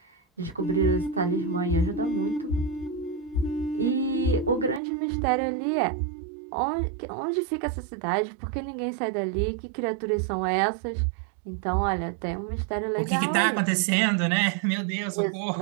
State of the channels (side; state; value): left; drops out; at 4.8 s